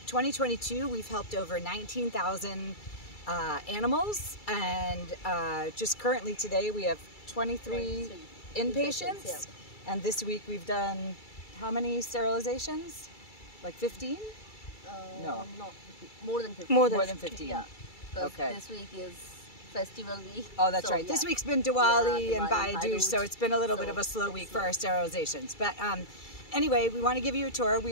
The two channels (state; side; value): late; right; 2.3 ms